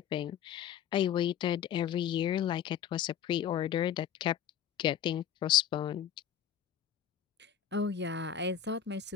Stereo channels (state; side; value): quieter; right; 9.4 dB